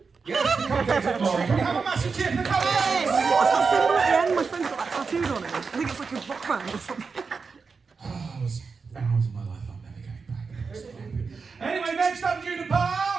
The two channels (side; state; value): left; quieter; 5.0 dB